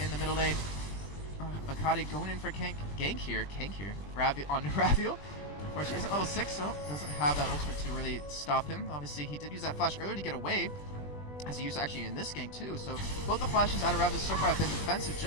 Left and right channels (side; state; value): right; late; 20 ms